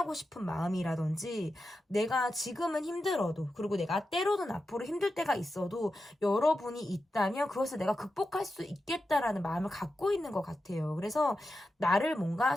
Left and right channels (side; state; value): both; normal; correlation 0.90